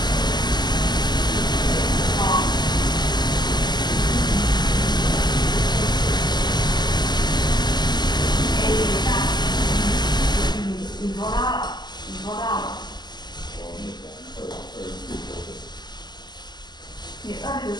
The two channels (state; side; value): late; right; 0.21 ms